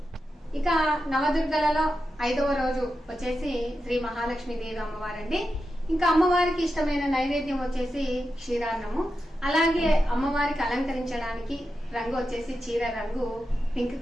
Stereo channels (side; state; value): both; normal; correlation 0.89